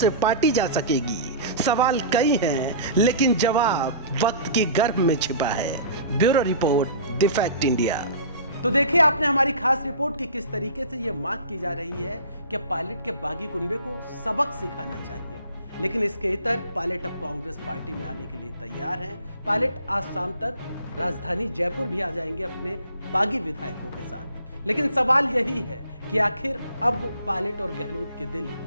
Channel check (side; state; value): both; inverted; correlation -0.42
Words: पाटी जा सकेगी? सवाल कई हैं, लेकिन जवाब वक्त की गर्भ में छिपा है। Bureau report, the fact India. तो देखिए आपने हमारी खास रिपोर्ट की किस तरीके से यह मांग की जा रही है कि पायलट के बागी कुनबे को सबक सिखाना चाहिए। लेकिन इसके इतर पायलट अब कांग्रेस पार्टी में आने के लिए तैयार हैं। पायलट आज शाम तक राजधानी जयपुर भी आ जाएंगे अपने बागी विधायकों के साथ। लेकिन सवाल यही है कि आखिर अब पायलट और गहलोत के दिल